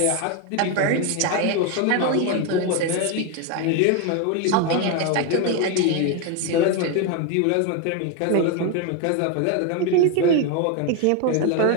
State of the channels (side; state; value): both; different; correlation 0.02